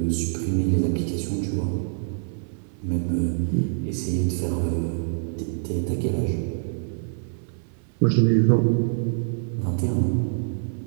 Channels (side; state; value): left; silent; 58 dB below the other